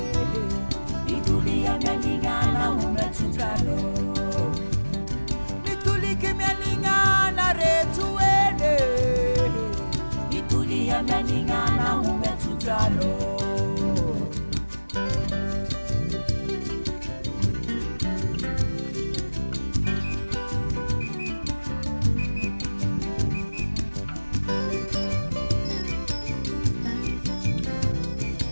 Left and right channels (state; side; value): inverted; both; correlation -1.00